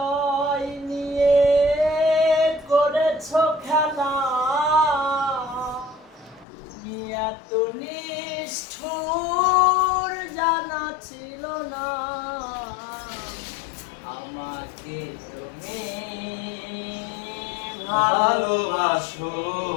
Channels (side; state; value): right; drops out; at 6.5 s